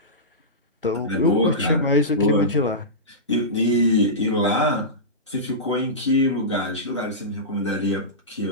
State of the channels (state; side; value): normal; both; correlation -0.17